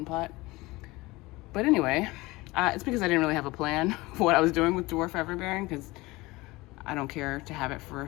pot. But anyway, it's because I didn't really have a plan for what I was doing with dwarf everbearing, because I don't care to have it for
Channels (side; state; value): right; quieter; 21.3 dB